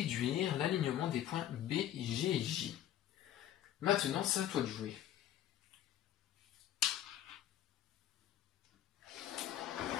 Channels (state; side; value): quieter; right; 11.6 dB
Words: l'alignement des points B, G et J. Maintenant, c'est à toi de jouer.